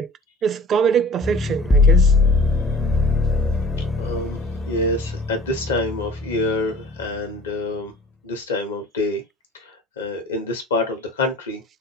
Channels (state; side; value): normal; both; correlation 0.47